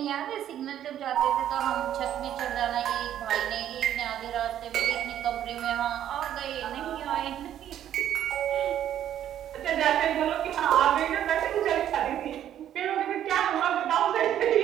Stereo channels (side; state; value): left; quieter; 10.9 dB